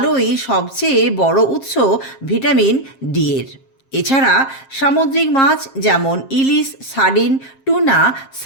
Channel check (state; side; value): late; right; 7.5 ms